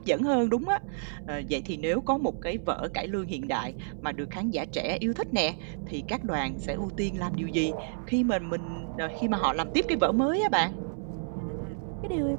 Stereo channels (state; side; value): silent; left; 58 dB below the other